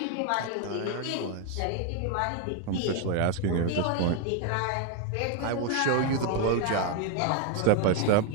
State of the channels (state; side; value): different; both; correlation 0.01